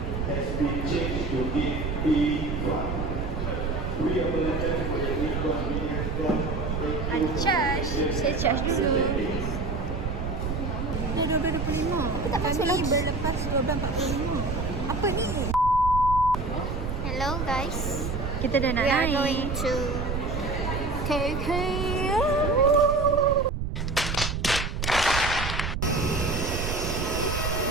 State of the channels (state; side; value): noise; right; rumble, 3 dB below the sound